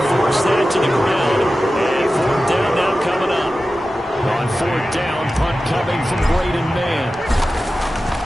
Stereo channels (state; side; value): normal; both; correlation 0.94